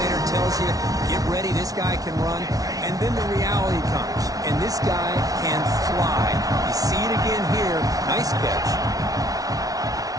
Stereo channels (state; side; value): late; left; 0.18 ms